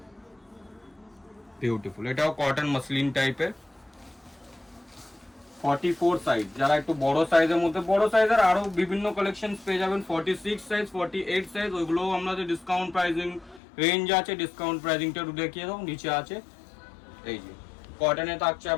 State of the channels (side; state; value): right; drops out; at 13.6 s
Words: বিউটিফুল। এটাও কটন মাসলিন টাইপের। 44 সাইজ, যারা একটু বড় সাইজের মধ্যে, বড় সাইজের আরো বিভিন্ন কালেকশন পেয়ে যাবেন। 46 সাইজ, 48 সাইজ, ওইগুলোও আমাদের ডিসকাউন্ট প্রাইসিং রেঞ্জ আছে। ডিসকাউন্ট প্রাইসিংটা একটু দেখিয়ে দাও, নিচে আছে। এই যে কটনে থাকছে